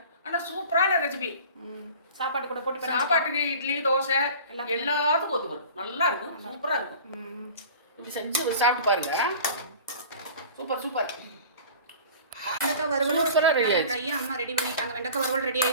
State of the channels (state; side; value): inverted; both; correlation -0.41